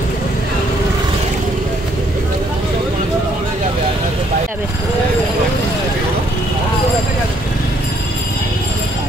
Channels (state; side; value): normal; both; correlation 0.68